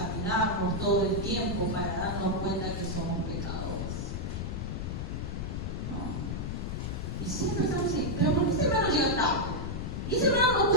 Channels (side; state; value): left; noise; rumble, 3 dB below the sound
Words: todo el tiempo para darnos cuenta que somos pecadores, ¿no? Y siempre estamos así, pero ¿por qué ese hermano llega tarde? Y ese hermano no